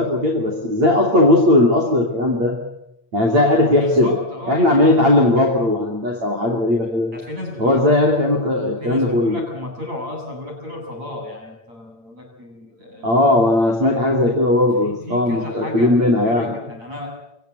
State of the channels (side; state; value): left; late; 8.7 ms